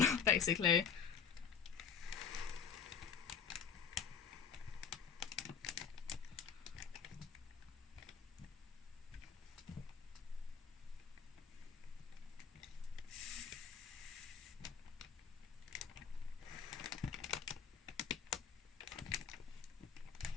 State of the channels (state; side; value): quieter; right; 6.9 dB